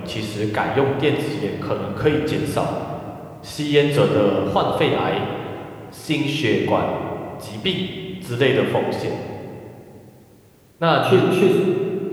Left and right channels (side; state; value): both; identical; correlation 1.00